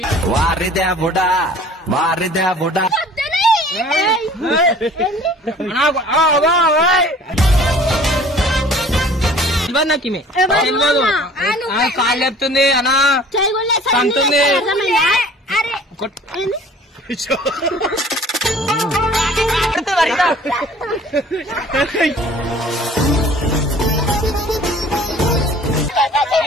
వారిదేవుడా వారిదేవుడా నాకు కాళ్ళు చెప్తుంది అనా సంతుంది.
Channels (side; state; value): both; normal; correlation 0.49